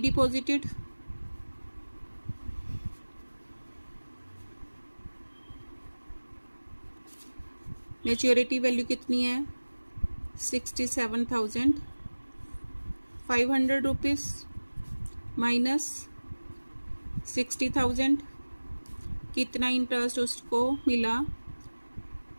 maturity value कितनी है 67,500 रुपीज़ माइनस 60,000, कितना इंटरेस्ट उसको मिला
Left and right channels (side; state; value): both; inverted; correlation -1.00